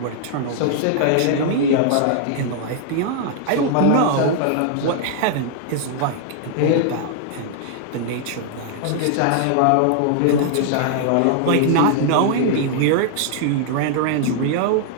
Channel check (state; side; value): different; both; correlation -0.01